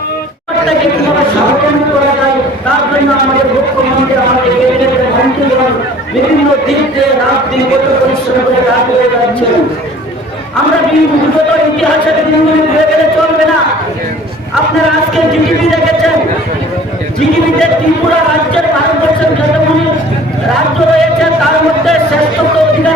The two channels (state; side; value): normal; both; correlation 0.49